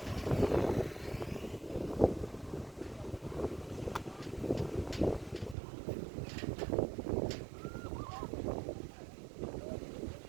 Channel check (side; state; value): left; drops out; at 5.6 s